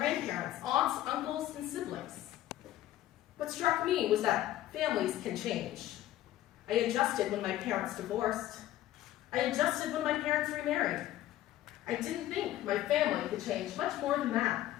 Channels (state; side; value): quieter; right; 13.9 dB